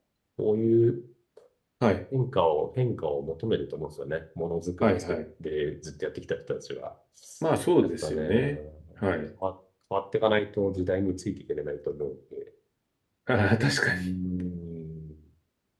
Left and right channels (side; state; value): both; identical; correlation 1.00